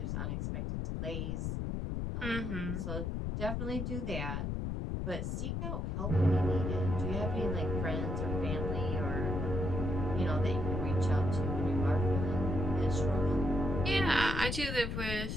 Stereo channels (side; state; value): left; noise; rumble, 2 dB below the sound